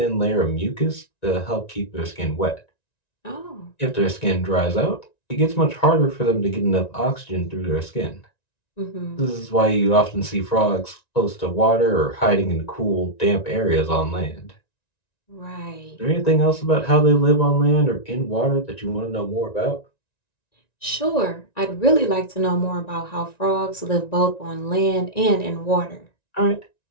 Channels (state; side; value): late; right; 1.9 ms